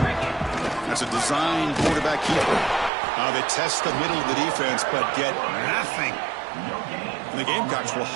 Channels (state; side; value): drops out; left; at 2.9 s